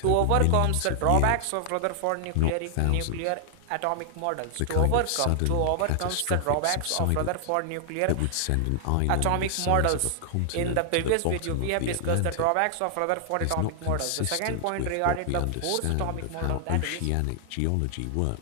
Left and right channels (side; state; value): both; different; correlation 0.00